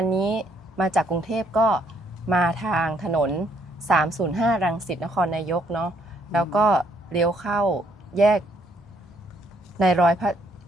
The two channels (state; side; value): normal; both; correlation 0.69